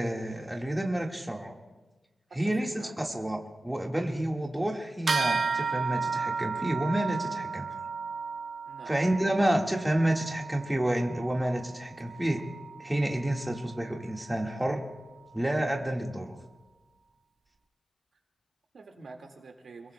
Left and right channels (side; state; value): both; normal; correlation 0.96